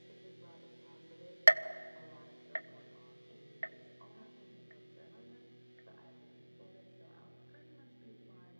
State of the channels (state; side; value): inverted; both; correlation -1.00